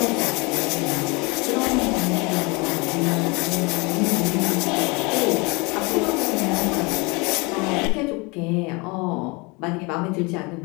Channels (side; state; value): right; quieter; 27.7 dB